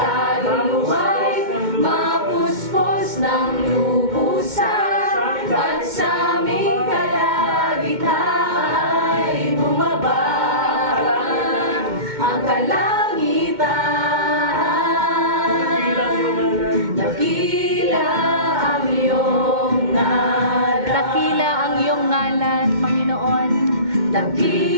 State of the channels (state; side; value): late; left; 2.1 ms